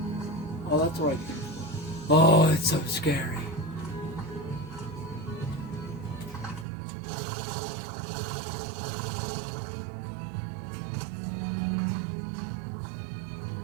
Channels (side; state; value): left; drops out; at 6.7 s